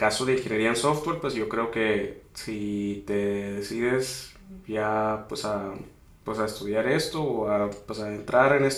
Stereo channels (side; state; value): both; identical; correlation 1.00